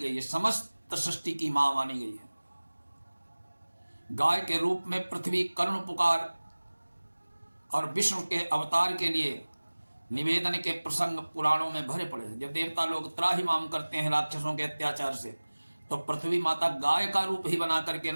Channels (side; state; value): both; inverted; correlation -1.00